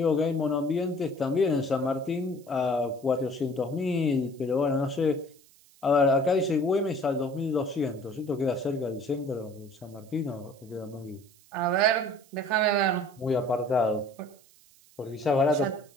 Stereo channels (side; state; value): right; noise; hiss, 28 dB below the sound